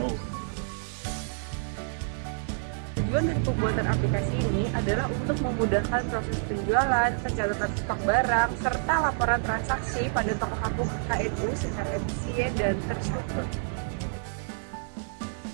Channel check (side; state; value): left; silent; 58 dB below the other